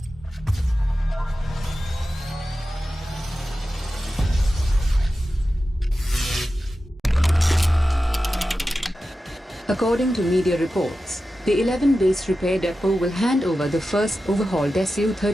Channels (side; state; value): both; normal; correlation 0.93